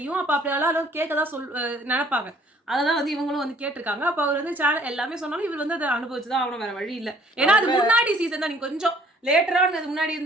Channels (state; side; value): normal; both; correlation 0.58